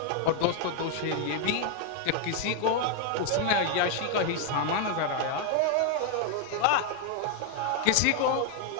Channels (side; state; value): both; different; correlation 0.00